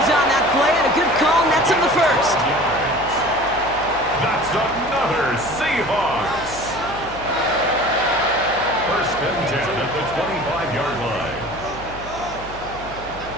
on that play and a good call nets him the first. That's another Seahawks. 1st and 10 at the 25-yard line.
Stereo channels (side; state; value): right; noise; hum, 16 dB below the sound